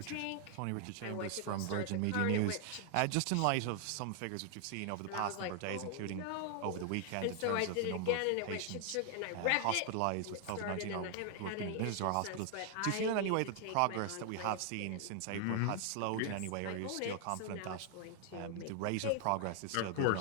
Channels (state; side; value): different; both; correlation 0.00